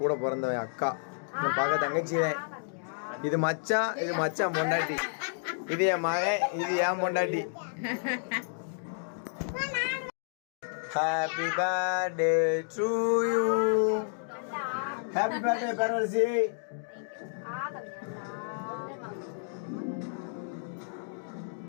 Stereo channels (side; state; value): right; silent; digital silence